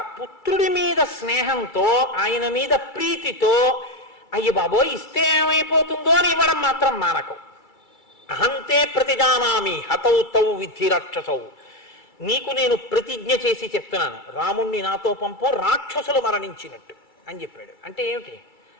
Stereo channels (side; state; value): right; late; 2.3 ms